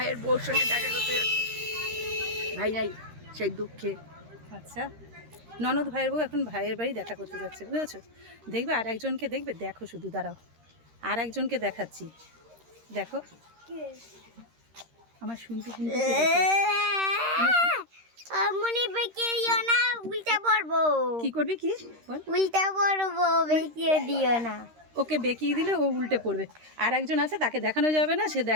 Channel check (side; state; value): left; late; 13 ms